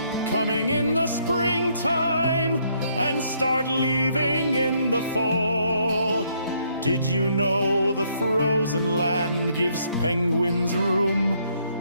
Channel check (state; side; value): inverted; both; correlation -0.70